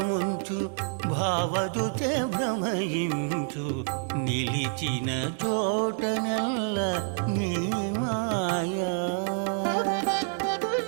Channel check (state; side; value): silent; left; digital silence